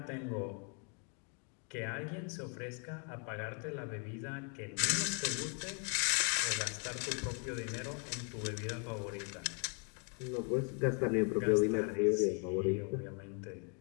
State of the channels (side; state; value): right; quieter; 39.6 dB